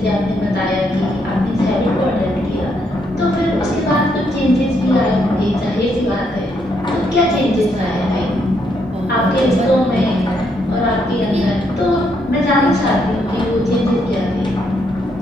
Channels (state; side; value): normal; both; correlation 0.75